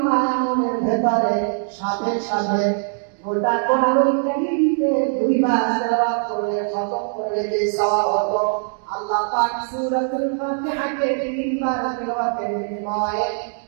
ব্যাপারে সাথে সাথে গোটা কোরআনুল কারীমকে 2 বার তেলাওয়াত করে খতম করে যে সওয়াব হতো, আল্লাহ পাক সূরাতুল ফাতিহাকে 3 বার তেলাওয়াতের বিনিময়ে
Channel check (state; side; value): silent; left; digital silence